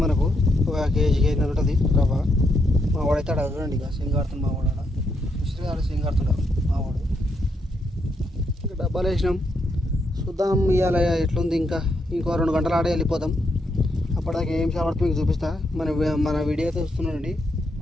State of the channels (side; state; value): both; normal; correlation 0.78